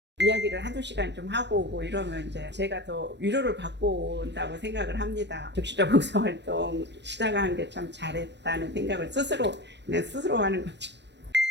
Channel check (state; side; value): late; left; 0.51 ms